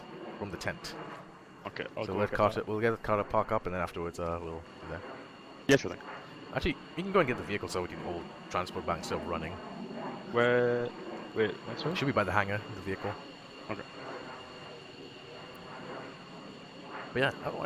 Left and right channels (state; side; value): identical; both; correlation 1.00